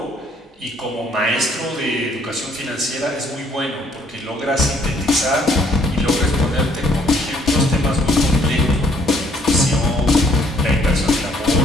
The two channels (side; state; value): both; normal; correlation 0.64